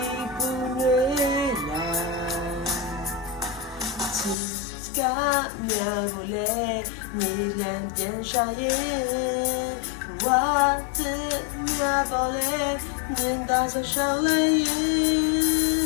ပူနွေးလာချစ်ကမြာကိုလေမြေလန်းပြန်ရှာရဲ့ဝါတဲ့မြာပေါ်လေမြင်တာဆိုရှောင်းလိုက်ရဲ့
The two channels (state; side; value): drops out; right; at 4.4 s